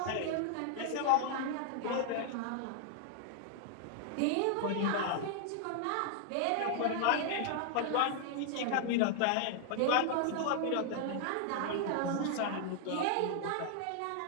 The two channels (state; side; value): different; both; correlation 0.00